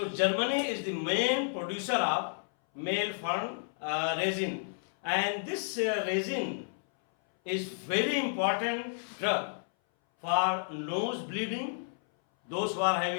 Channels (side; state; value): right; silent; 57 dB below the other